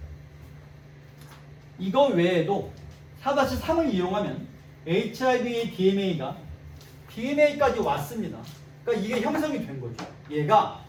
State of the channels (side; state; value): both; identical; correlation 1.00